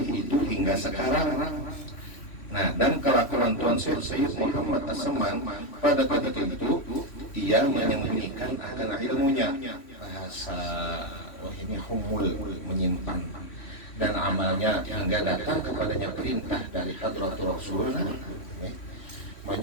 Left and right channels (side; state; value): right; late; 3.1 ms